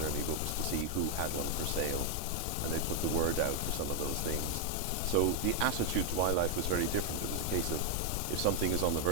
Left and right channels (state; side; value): different; both; correlation 0.00